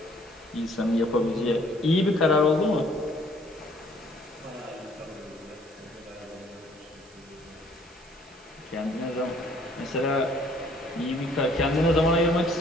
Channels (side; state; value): right; noise; hiss, 26 dB below the sound